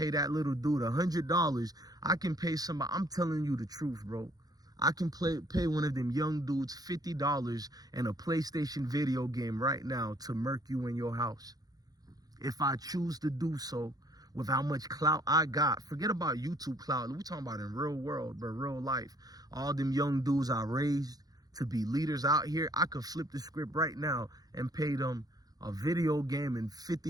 that little dude $100. I can pay somebody, I'm telling you the truth, bro. I can pay one of them young dudes $50 and a PlayStation video game right now to murk you in your house. If I choose to do so, with how much clout I got. Forget about YouTube clout. We're talking about in real world, but real life. All them young dudes I raised to be leaders out here, I could flip the script right now and pay them a video game and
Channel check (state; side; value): late; left; 0.18 ms